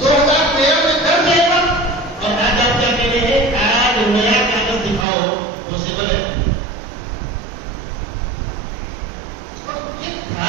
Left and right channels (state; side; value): drops out; left; at 5.1 s